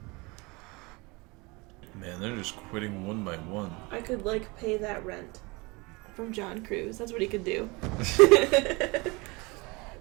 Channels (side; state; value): left; quieter; 26.0 dB